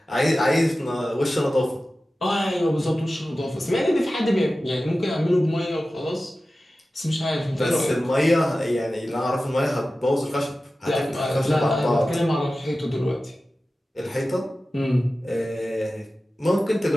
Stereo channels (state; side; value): normal; both; correlation 0.95